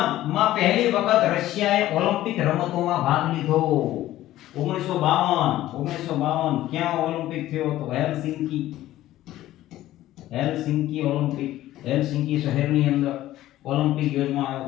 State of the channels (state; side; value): quieter; right; 14.6 dB